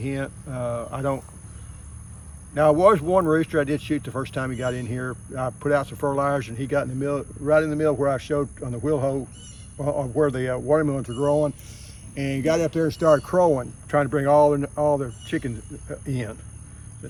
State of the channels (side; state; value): both; identical; correlation 1.00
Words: Now, there was one rooster I did shoot the first time he got in here. I put out some fertilizer, and he got in the middle, right in the middle where I showed on the wheel hoe, where the watermelons were growing, and he got up there and started crowing, trying to bring all the chickens in. So